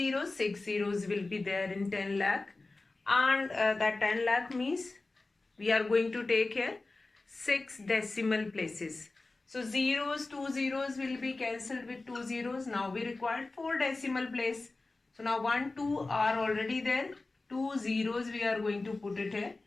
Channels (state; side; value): quieter; right; 3.3 dB